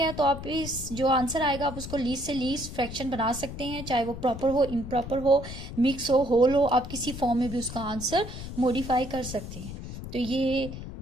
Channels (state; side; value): noise; left; rumble, 10 dB below the sound